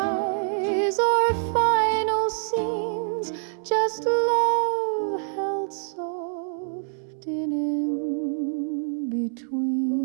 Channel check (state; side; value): silent; left; digital silence